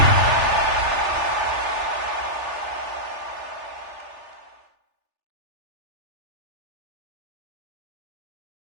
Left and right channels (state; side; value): late; left; 3.4 ms